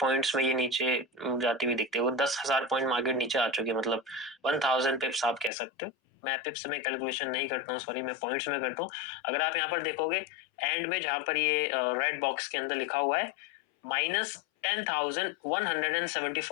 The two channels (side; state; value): right; drops out; at 5.5 s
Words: में ये नीचे जाती हुई दिखती है। वो 10,000 पॉइंट मार्केट नीचे आ चुकी है, मतलब 1000 पिप्स आप कह सकते हो। मैं पिप्स में कैलकुलेशन नहीं करता हूँ, सॉरी, मैं पॉइंट्स में करता हूँ। अगर आप यहाँ पर देखोगे एंड में जहां पर ये रेड बॉक्स के अंदर लिखा हुआ है